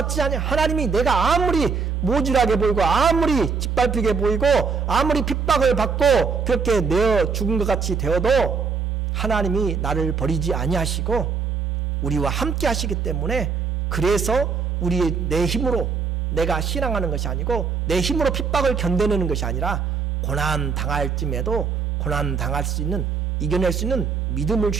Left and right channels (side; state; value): left; quieter; 5.5 dB